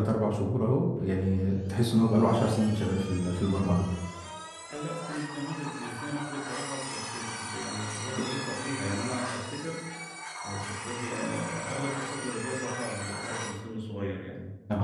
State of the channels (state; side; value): identical; both; correlation 1.00